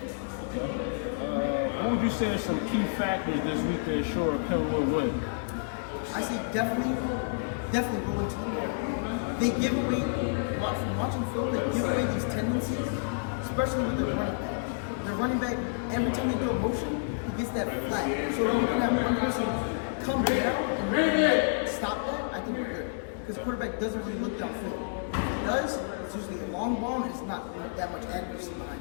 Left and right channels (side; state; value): right; quieter; 39.8 dB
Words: What would you say are some key factors this week to ensure Penwood win? I say definitely rolling to the ball. They give away, from watching film, they give away these tendencies, especially with their running back. Their running back, every time they do a motion, he gets that flat. So if you can have one person come down and really stop that, I think we're good. Because the quarterback doesn't really look downfield. If he does, it's usually a long ball and it's not that much accuracy behind